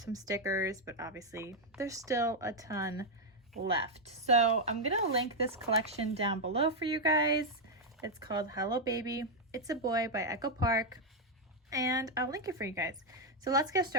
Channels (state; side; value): normal; both; correlation 0.01